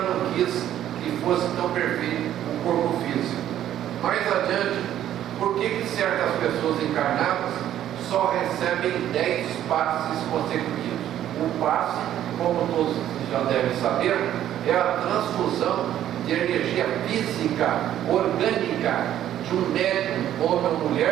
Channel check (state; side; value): quieter; left; 11.6 dB